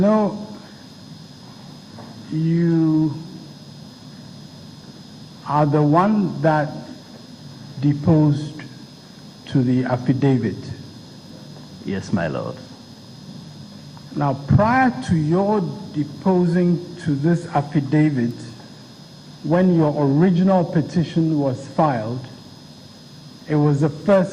you are the one that deposed to the affidavit. Yes, my lord. Now, prior to your deposing to this affidavit, when your original petition was filed, it was the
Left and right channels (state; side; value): identical; both; correlation 1.00